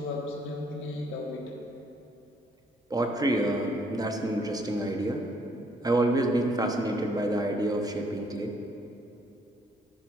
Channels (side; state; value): both; normal; correlation 0.67